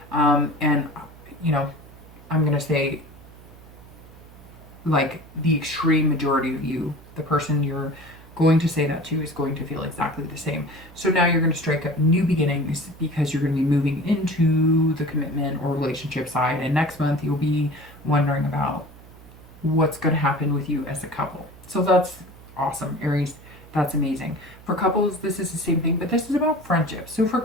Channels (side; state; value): right; noise; hum, 21 dB below the sound